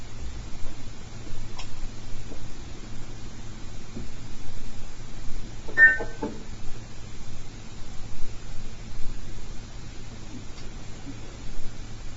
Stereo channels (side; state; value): both; identical; correlation 1.00